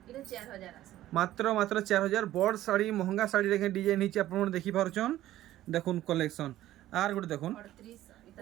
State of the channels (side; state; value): left; quieter; 14.1 dB